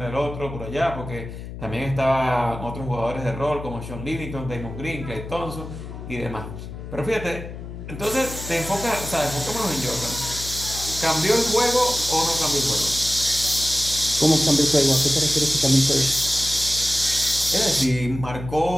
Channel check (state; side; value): noise; left; hum, 10 dB below the sound